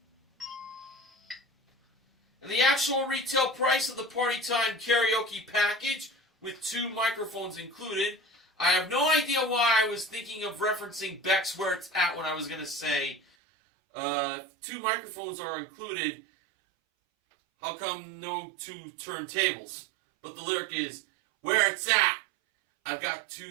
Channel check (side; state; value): left; drops out; at 13.2 s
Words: And the actual retail price of the Party Time karaoke package with 2 microphones included, I have no idea why I was thinking of referencing Beck's Where It's At when I was going to say 2 microphones are included. How come no 2 turntables? But the lyric is, where it's at. I've got